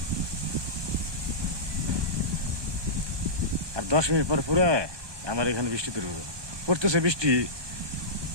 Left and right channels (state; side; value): late; left; 1.2 ms